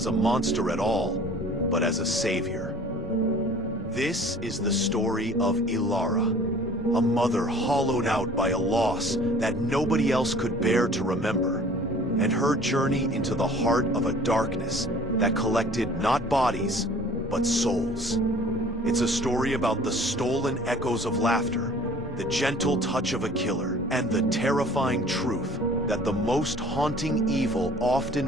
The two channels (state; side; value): normal; both; correlation 0.49